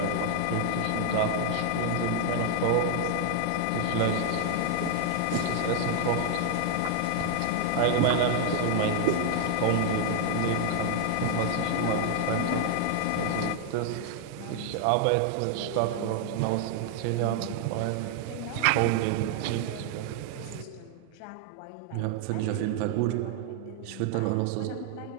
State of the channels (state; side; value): different; both; correlation 0.00